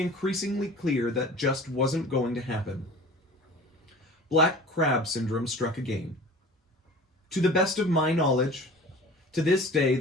clear that just wasn't going to happen. Black crab syndrome struck again. To the best of my knowledge, to this day,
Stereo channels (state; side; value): normal; both; correlation 0.41